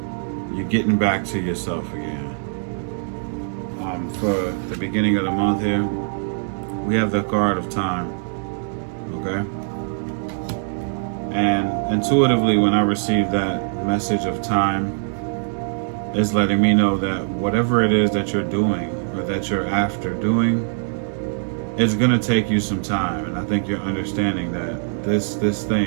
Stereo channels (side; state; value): left; silent; digital silence